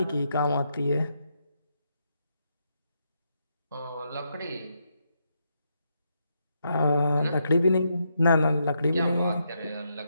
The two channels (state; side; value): inverted; both; correlation -0.80